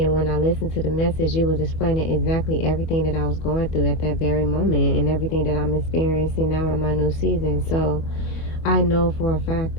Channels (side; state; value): right; late; 25 ms